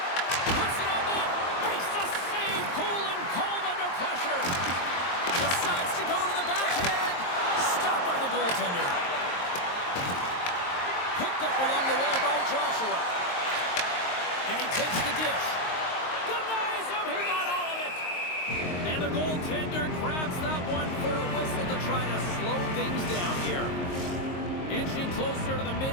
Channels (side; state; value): right; late; 22 ms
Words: Puts it on net. Makes the save. Cool and calm under pressure. Decides to go to the backhand. Stopped by the goaltender. Picked up along the wall by Joshua. And he takes the dish. Denies him. He got all of it. And the goaltender grabs that one for a whistle to try to slow things down here. Inching closer to the